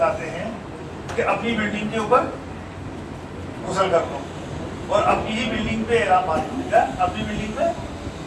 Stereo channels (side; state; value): both; identical; correlation 1.00